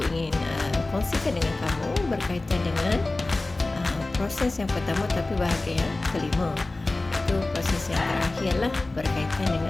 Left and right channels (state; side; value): quieter; right; 3.0 dB